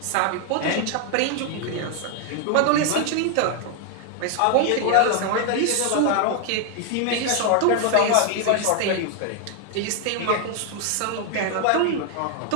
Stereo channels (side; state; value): both; different; correlation 0.01